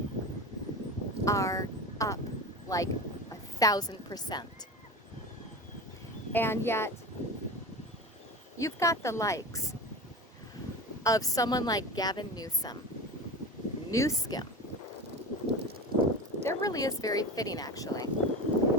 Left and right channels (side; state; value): both; normal; correlation 0.29